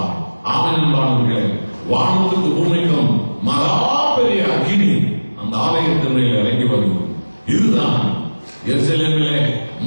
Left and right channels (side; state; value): both; inverted; correlation -1.00